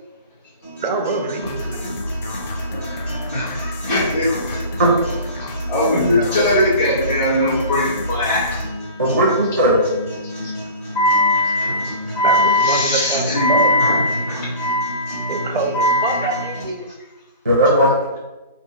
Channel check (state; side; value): inverted; both; correlation -0.37